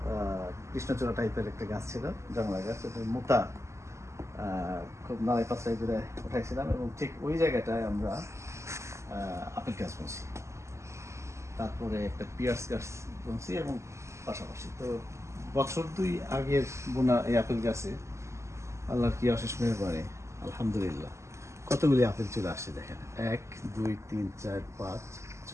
কৃষ্ণচূড়া টাইপের একটা গাছ ছিল, জংলা গাছ, এটা মোটা, খুব নাড়াই পাঁচড়াই করে উঠাইছিলাম এবং ঠিক ওই জায়গাটায় আমরা আপেল গাছ বুনছি, তারপরে একটা পিয়ার্স গাছ বুনছি এবং পাশাপাশি। তো বছর 2 আগের বোনা এই আপেল গাছে আল্লাহর কি অশেষ মেহেরবানি, আলহামদুলিল্লাহ কতগুলি আপেল চলে আসছে। দেখেন 1 2 3 4 5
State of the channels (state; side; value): late; left; 0.14 ms